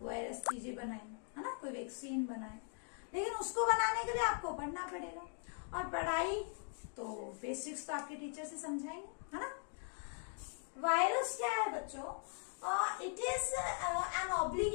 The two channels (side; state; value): right; silent; 51 dB below the other